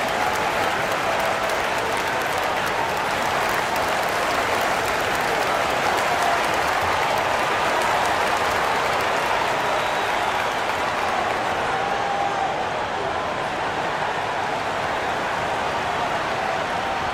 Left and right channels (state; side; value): identical; both; correlation 1.00